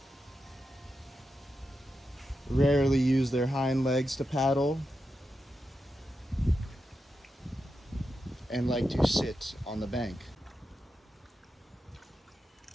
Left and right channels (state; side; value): normal; both; correlation 0.88